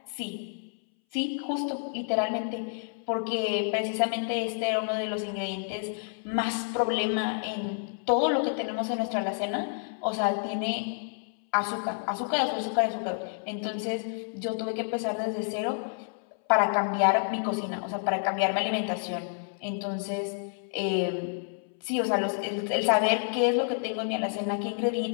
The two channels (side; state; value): right; silent; 58 dB below the other